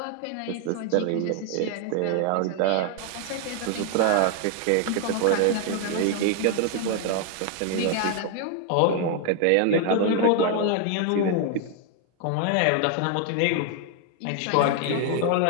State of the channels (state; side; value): different; both; correlation 0.00